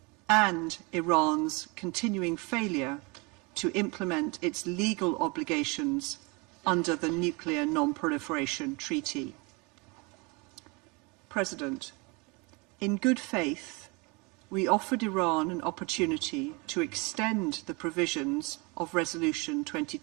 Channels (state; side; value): quieter; left; 28.5 dB